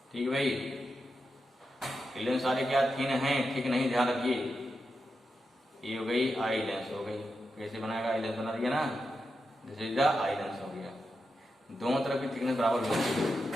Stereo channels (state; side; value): normal; both; correlation 0.88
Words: ठीक है भाई, लेंस सारे क्या थिन हैं, ठीक नहीं, ध्यान रखिए। ये हो गई आई लेंस हो गई, कैसे बनाएगा, आई लेंस बना दिया ना, this is the eye lens हो गया। दोनों तरफ की थिकनेस बराबर होनी चाहिए।